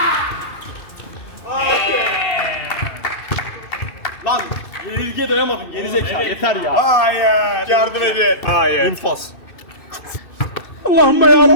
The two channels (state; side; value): late; right; 2.6 ms